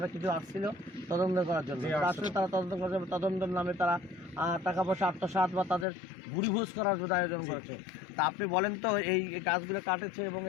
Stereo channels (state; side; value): drops out; right; at 5.9 s